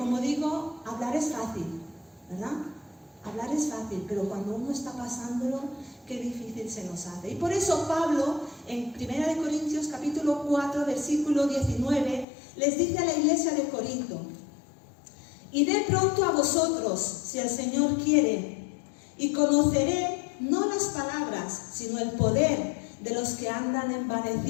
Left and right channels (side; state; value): right; drops out; at 12.2 s